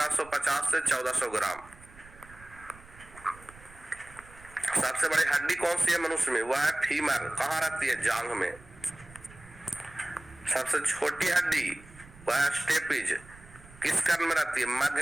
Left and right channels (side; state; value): right; noise; rumble, 21 dB below the sound